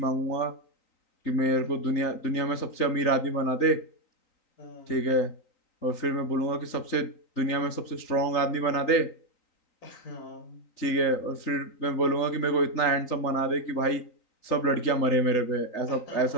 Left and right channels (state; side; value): late; right; 3.9 ms